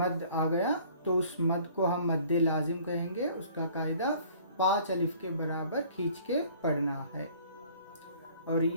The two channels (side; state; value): both; inverted; correlation -0.53